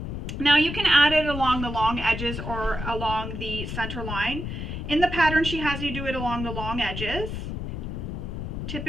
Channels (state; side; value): noise; left; rumble, 5 dB below the sound